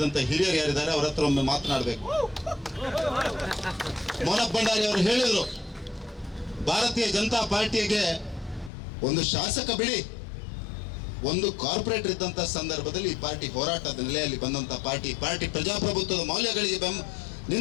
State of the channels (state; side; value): drops out; right; at 8.7 s